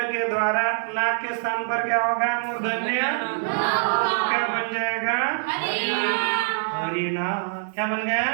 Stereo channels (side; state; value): left; silent; 57 dB below the other